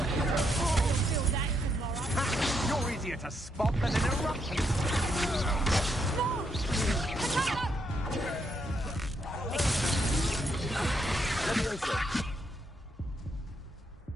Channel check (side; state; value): both; normal; correlation 0.77